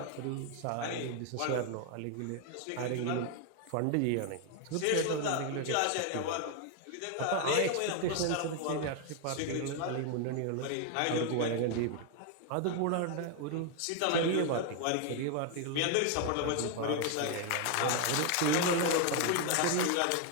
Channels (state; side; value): different; both; correlation 0.01